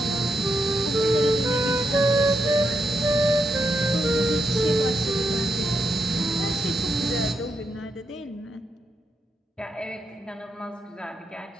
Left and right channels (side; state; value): both; normal; correlation 0.83